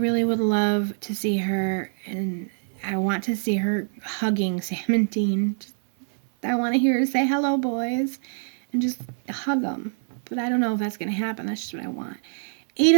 would love to see her, and I want to see her hugging Sam and Dean. I want to hear her say, hello, boys, and just hug them. But I don't know if that's going to happen. That's just what I want. Eight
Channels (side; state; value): left; silent; digital silence